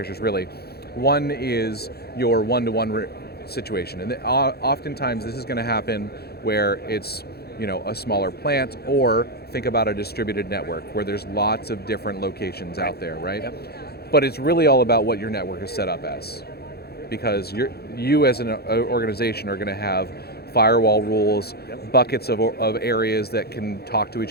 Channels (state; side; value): late; right; 0.46 ms